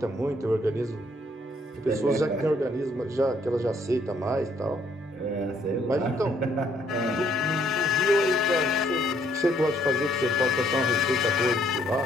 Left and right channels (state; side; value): normal; both; correlation 0.67